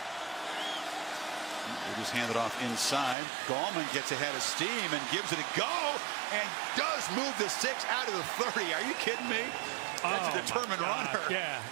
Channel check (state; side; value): drops out; left; at 3.2 s